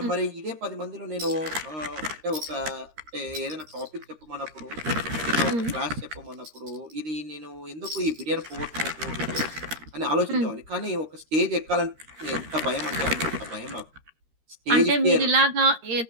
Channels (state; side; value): late; left; 13 ms